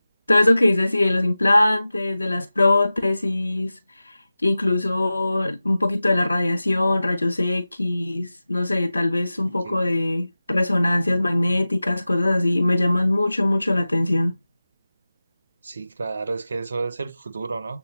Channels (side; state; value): both; inverted; correlation -0.95